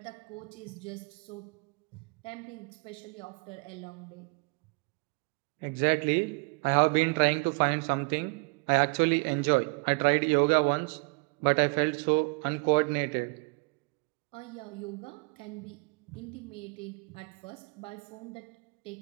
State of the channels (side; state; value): left; quieter; 32.7 dB